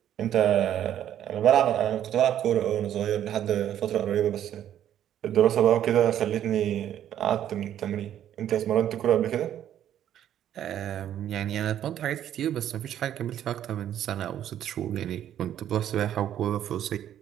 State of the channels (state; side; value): quieter; left; 10.8 dB